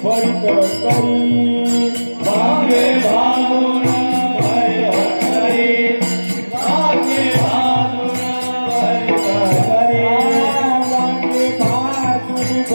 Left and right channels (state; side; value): inverted; both; correlation -1.00